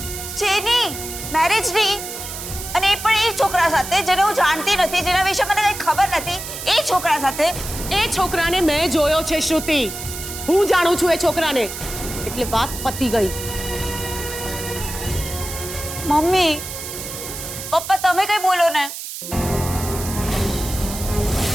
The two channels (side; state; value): right; noise; hiss, 8 dB below the sound